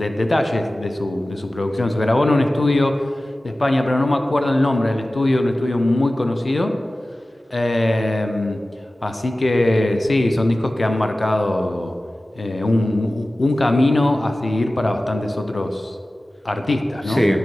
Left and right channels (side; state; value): both; normal; correlation 0.96